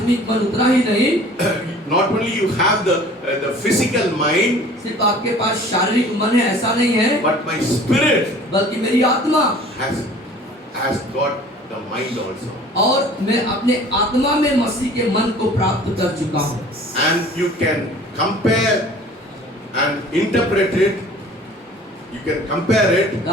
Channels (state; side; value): normal; both; correlation 0.48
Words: मन उतना ही नहीं, Not only you have the physical mind, सिर्फ आपके पास शारीरिक मन है ऐसा नहीं है, but my spirit बल्कि मेरी आत्मा has got the mind also. और मैं अपने आत्मा में मसीह के मन को प्राप्त कर चुका हूँ। And you can compare and interpret it. You can compare it.